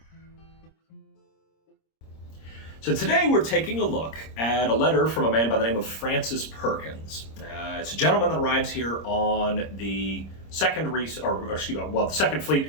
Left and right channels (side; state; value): right; late; 26 ms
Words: So today we're taking a look at a letter from a man by the name of Francis Perkins. It's a gentleman that arrives here on the second the second fleet to